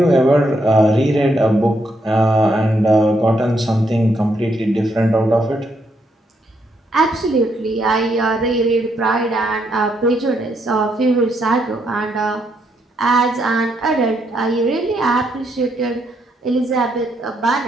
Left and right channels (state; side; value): normal; both; correlation 0.76